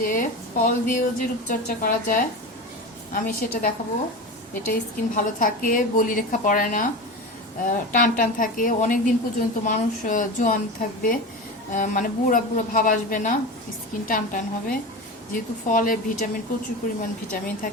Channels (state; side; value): normal; both; correlation 0.27